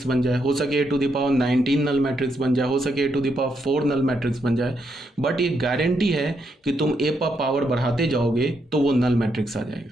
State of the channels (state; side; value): normal; both; correlation 0.79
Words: बन जाए, हो सके a to the power 19 null matrix बन जाए, हो सके a to the power 4 null matrix बन जाए, बट ये गारंटी है कि तुम a पर पावर बढ़ाते जाओगे तो वो नल मैट्रिक्स आ